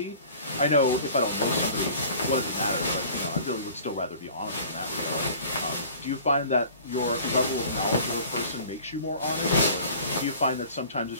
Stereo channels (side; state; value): both; inverted; correlation -0.46